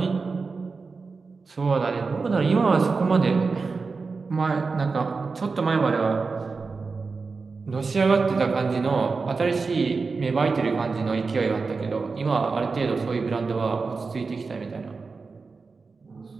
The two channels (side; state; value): left; quieter; 4.4 dB